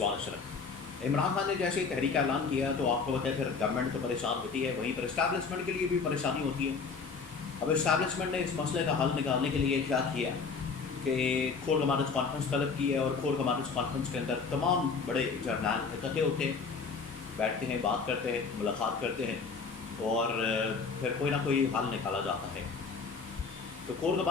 اشرف۔ عمران خان نے جیسے ہی تحریک کا اعلان کیا تو آپ کو پتہ ہے پھر گورنمنٹ تو پریشان ہوتی ہے، وہیں پر اسٹیبلشمنٹ کے لیے بھی پریشانی ہوتی ہے۔ اب اسٹیبلشمنٹ نے اس مسئلے کا حل نکالنے کے لیے کیا کیا کہ کور کمانڈرز کانفرنس طلب کی ہے، اور کور کمانڈرز کانفرنس کے اندر تمام بڑے جرنیل اکٹھے ہوتے ہیں، بیٹھتے ہیں، بات کرتے ہیں، ملاقات کرتے ہیں، اور پھر کوئی نہ کوئی حل نکالا جاتا ہے۔ تو کور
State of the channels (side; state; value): right; quieter; 5.1 dB